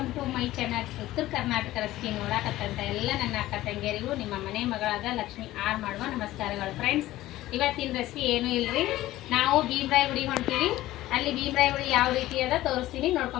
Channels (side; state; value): right; quieter; 15.9 dB